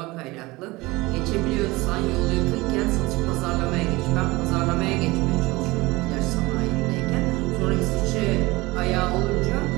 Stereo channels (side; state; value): left; quieter; 21.7 dB